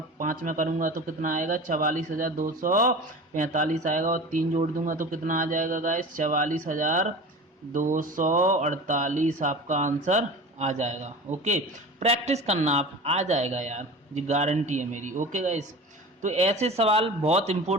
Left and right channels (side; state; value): both; normal; correlation 0.34